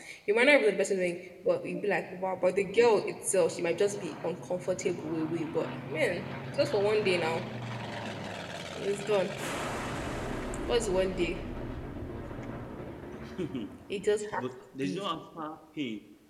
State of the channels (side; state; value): both; identical; correlation 1.00